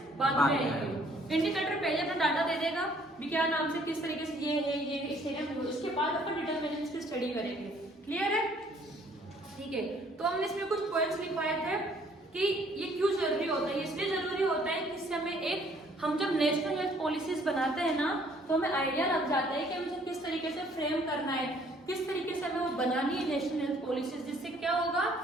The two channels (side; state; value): both; normal; correlation 0.61